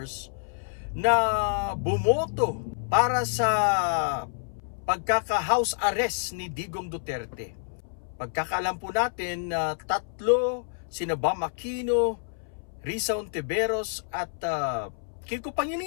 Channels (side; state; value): right; silent; 59 dB below the other